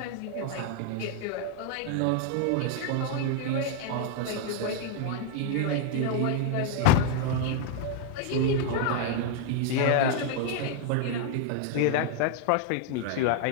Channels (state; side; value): different; both; correlation 0.00